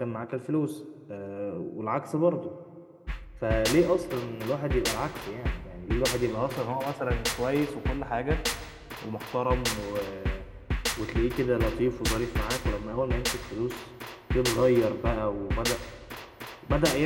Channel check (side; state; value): both; identical; correlation 1.00